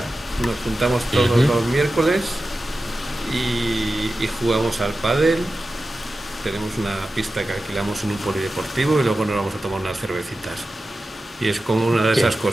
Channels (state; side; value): normal; both; correlation 0.93